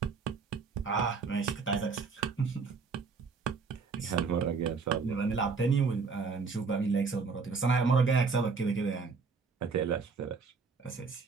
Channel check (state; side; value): quieter; left; 4.9 dB